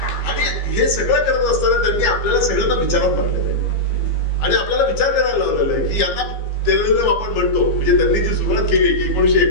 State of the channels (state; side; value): late; right; 15 ms